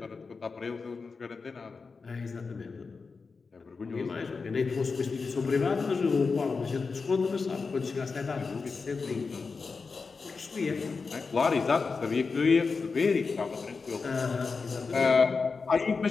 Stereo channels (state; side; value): quieter; right; 4.7 dB